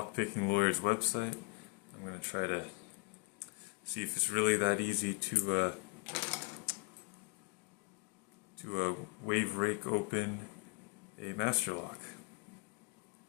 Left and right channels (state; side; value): quieter; right; 31.8 dB